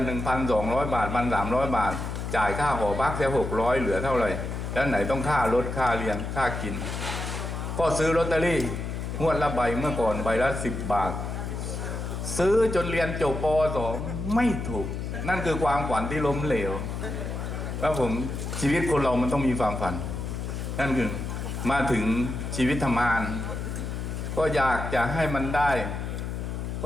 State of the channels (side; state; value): left; noise; hum, 4 dB below the sound